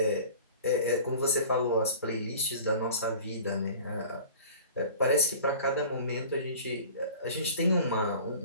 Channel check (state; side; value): inverted; both; correlation -0.42